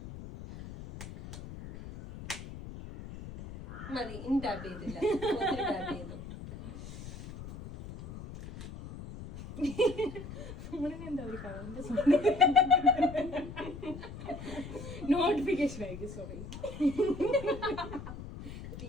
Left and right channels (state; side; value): noise; left; rumble, 12 dB below the sound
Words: മതി. ഇനി ടാപ്പ് ചെയ്തില്ല, ടാപ്പ് ചെയ്തു. എന്താ ഒരു നോട്ടിഫിക്കേഷൻ ആയിരിക്കും. സോറി.